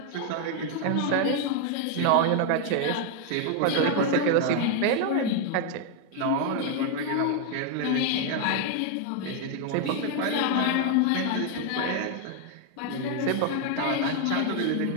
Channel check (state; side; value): different; both; correlation 0.01